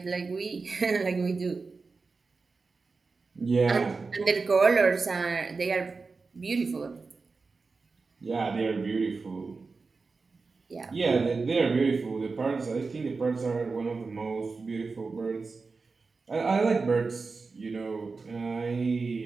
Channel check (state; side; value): quieter; left; 4.3 dB